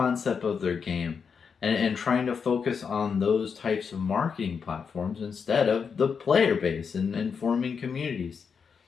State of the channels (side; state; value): right; quieter; 6.1 dB